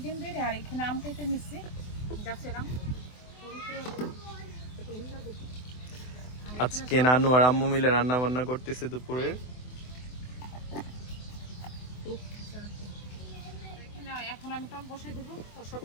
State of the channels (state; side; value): late; right; 24 ms